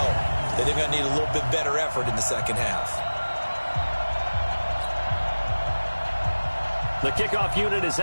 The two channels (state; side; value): inverted; both; correlation -1.00